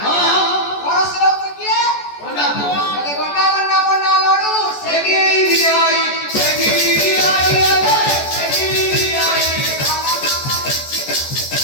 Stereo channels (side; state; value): right; late; 14 ms